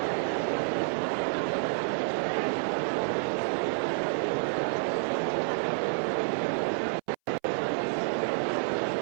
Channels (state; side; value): silent; left; 58 dB below the other